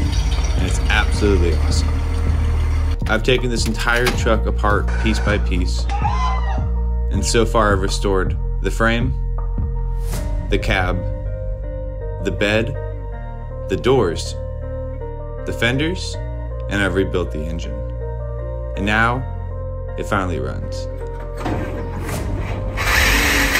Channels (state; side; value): identical; both; correlation 1.00